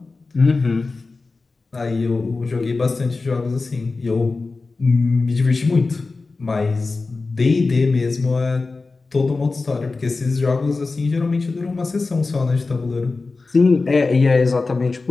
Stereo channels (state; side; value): quieter; right; 3.8 dB